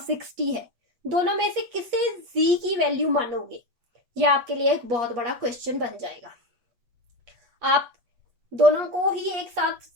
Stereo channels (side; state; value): left; late; 8.4 ms